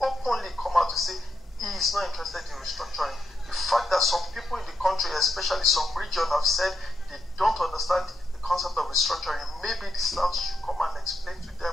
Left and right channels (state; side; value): normal; both; correlation 0.82